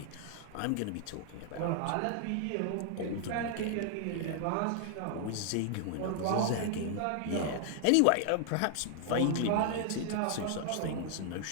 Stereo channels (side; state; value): both; different; correlation 0.00